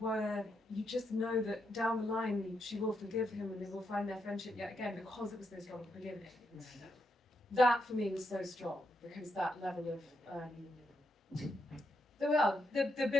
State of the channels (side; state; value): both; normal; correlation 0.81